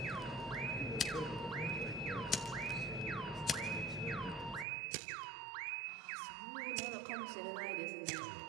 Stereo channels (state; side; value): drops out; left; at 4.7 s